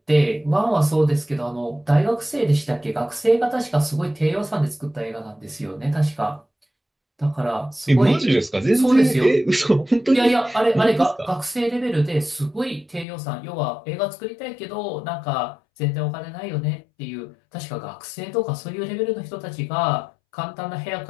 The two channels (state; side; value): drops out; right; at 13.1 s